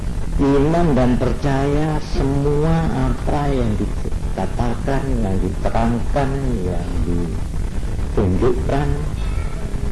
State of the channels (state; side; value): identical; both; correlation 1.00